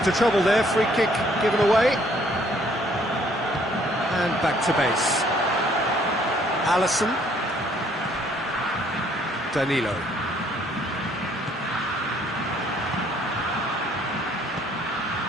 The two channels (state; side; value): normal; both; correlation 0.63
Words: trouble there, free kick given away. And back to base. Alisson. Danilo.